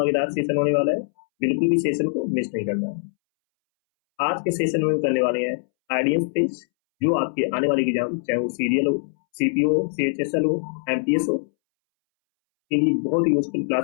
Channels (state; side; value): silent; right; 64 dB below the other